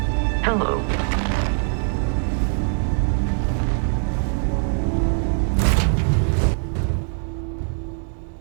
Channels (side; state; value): left; silent; 60 dB below the other